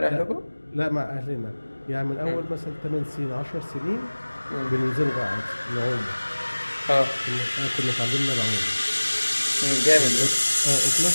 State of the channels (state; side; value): inverted; both; correlation -1.00